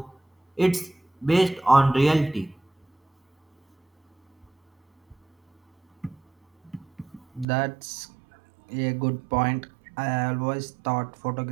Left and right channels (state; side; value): drops out; left; at 7.5 s